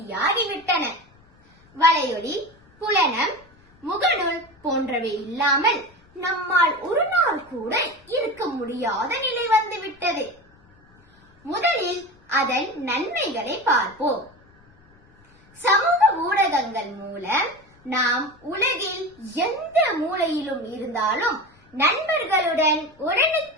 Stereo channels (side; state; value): left; noise; rumble, 29 dB below the sound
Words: வலையொலி, புலனம், முகநூல் போன்றவை இல்லாமல் நம்மால் ஒரு நாள் கூட இருக்க முடியாத நிலை வந்துவிட்டது. முதலில் அதன் நன்மைகளை பார்ப்போம். சமூக ஊடகங்கள் மூலம் நாம் உலகில் எந்த மூலையிலும் இருந்தாலும் நண்பர்களுடன்